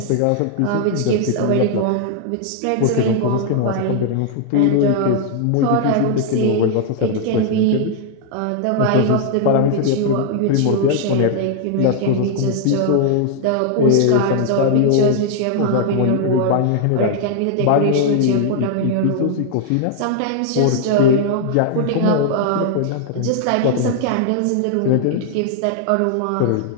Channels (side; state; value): both; different; correlation 0.00